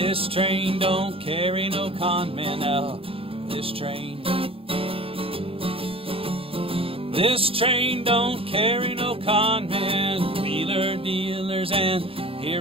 don't carry no con men. Now, this train don't carry no con men. Wheeler dealers and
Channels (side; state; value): left; late; 0.27 ms